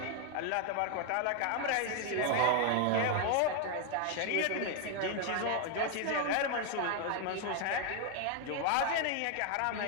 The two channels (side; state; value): both; different; correlation 0.00